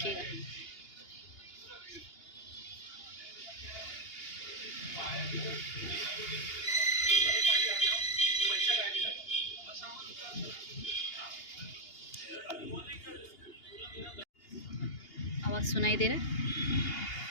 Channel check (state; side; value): late; right; 2.8 ms